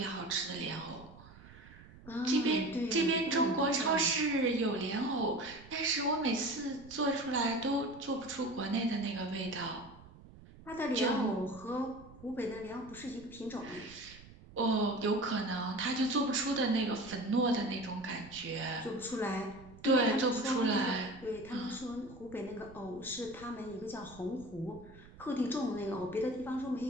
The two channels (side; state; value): right; noise; rumble, 20 dB below the sound